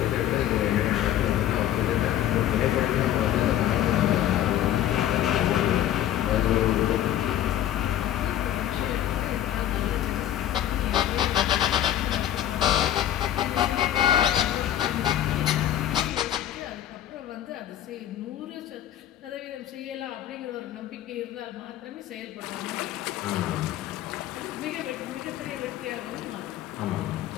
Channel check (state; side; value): quieter; right; 11.8 dB